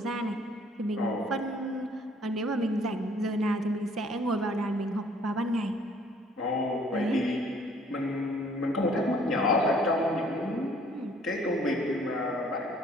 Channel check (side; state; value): both; normal; correlation 0.59